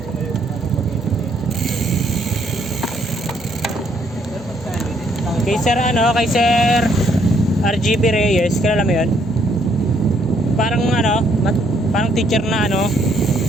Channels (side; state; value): both; normal; correlation 0.69